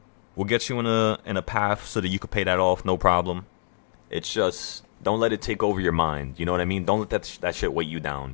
We'll get you in a path so that you can pay that off, no problem. It's just don't let it take over your mind. You know what I mean? Don't let that shit weight you down.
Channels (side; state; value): right; silent; digital silence